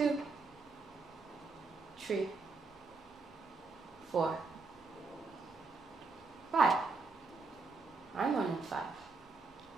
3, 4, 5. I'm 1 in 5.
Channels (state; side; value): quieter; left; 4.0 dB